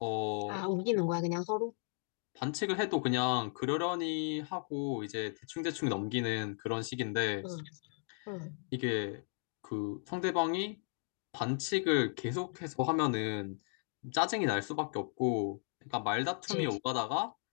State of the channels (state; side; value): silent; right; 54 dB below the other